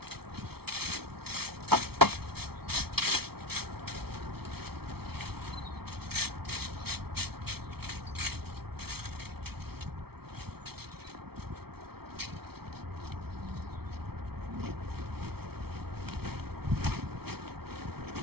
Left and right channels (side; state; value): left; late; 0.95 ms